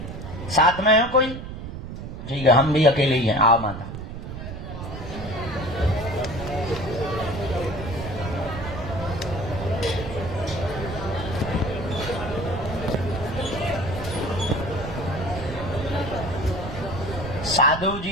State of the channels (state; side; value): noise; right; rumble, 9 dB below the sound